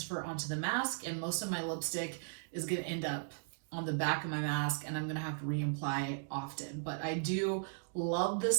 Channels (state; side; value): silent; left; digital silence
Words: onto the mask, and most of my lipstick is going to end up on the back of my mask, and I'm going to have to reapply often. But I do love